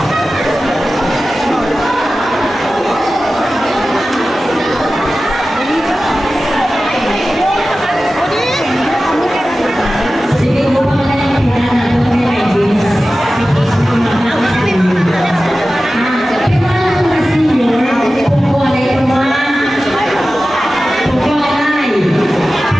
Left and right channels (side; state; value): both; normal; correlation 0.95